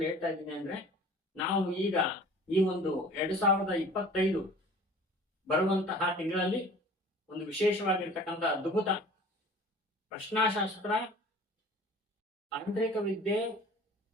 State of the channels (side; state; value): both; normal; correlation 0.45